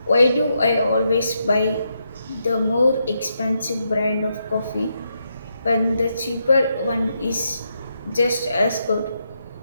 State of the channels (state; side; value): inverted; both; correlation -0.81